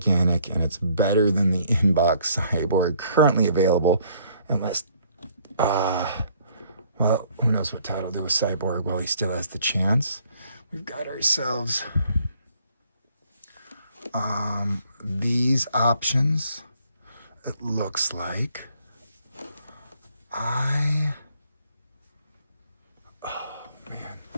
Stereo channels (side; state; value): both; inverted; correlation -0.63